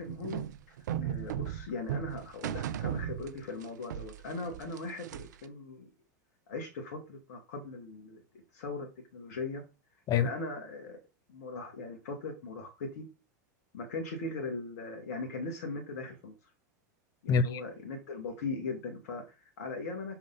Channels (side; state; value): both; normal; correlation -0.09